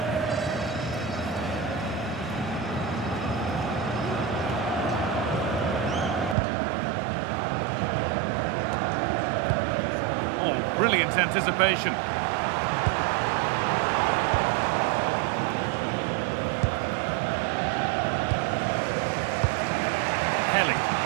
Oh, brilliant anticipation. Kelly.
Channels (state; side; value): drops out; left; at 6.4 s